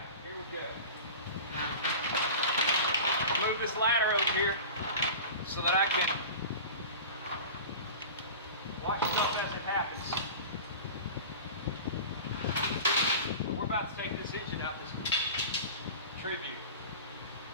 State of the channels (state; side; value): inverted; both; correlation -0.34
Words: here we go. Move this ladder over here so that I can watch stuff as it happens. So we're about to take this engine out this Tribute.